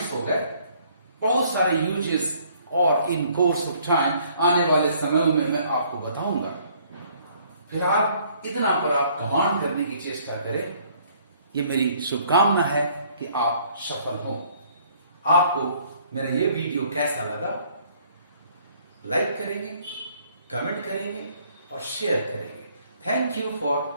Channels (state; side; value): inverted; both; correlation -0.61